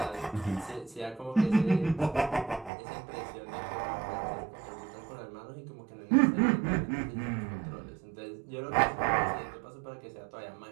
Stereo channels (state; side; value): drops out; left; at 2.7 s